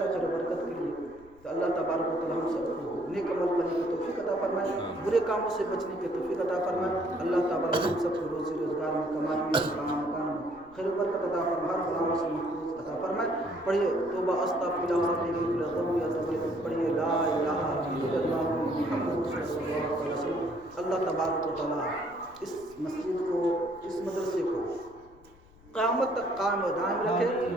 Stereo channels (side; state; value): left; noise; rumble, 26 dB below the sound